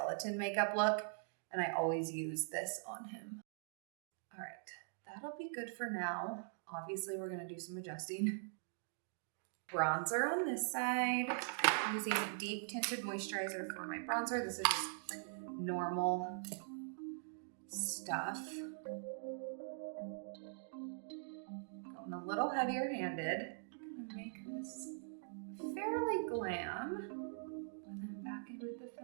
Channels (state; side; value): silent; left; digital silence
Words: makeup look, and I always use this on him. All right, that'll be good for now. Obviously, we're gonna do some adjusting. Bronzer on this side. I'm using deep tinted moisturizer for my bronzer. This is just normal stuff. Going a little heavier handed. I'm gonna make this fairly glam. And then back in with the